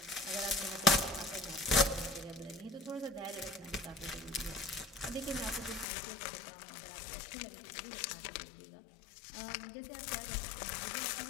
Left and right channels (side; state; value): right; drops out; at 5.9 s